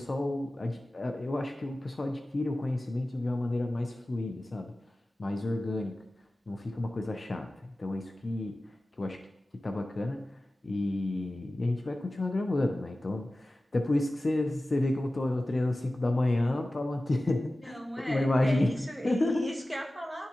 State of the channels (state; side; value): normal; both; correlation 0.96